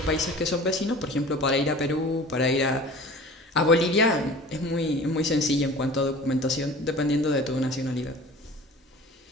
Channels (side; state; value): both; normal; correlation 0.42